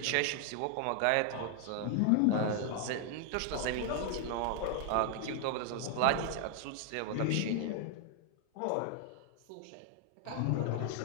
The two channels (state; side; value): different; both; correlation 0.00